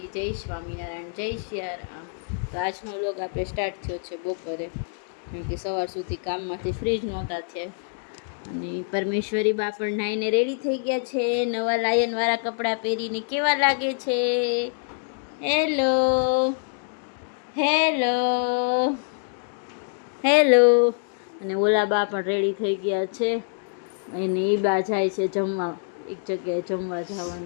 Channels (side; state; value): right; silent; digital silence